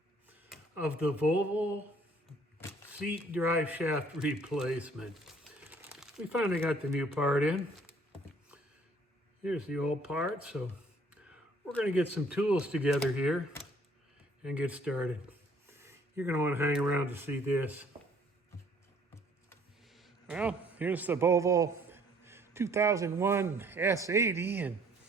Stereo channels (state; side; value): normal; both; correlation 0.59